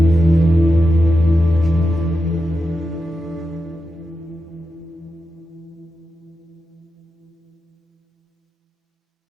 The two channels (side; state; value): both; normal; correlation 0.89